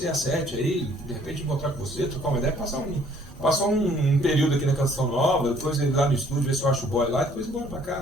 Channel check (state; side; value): normal; both; correlation 0.60